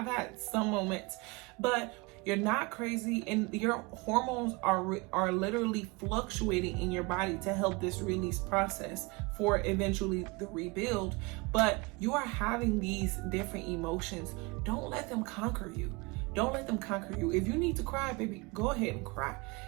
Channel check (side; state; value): left; quieter; 26.4 dB